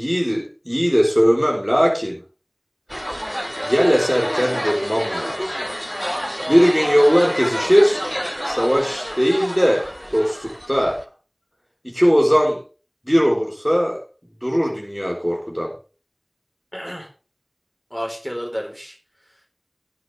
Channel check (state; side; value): identical; both; correlation 1.00